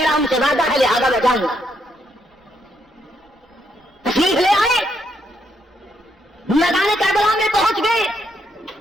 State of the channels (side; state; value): both; normal; correlation 0.76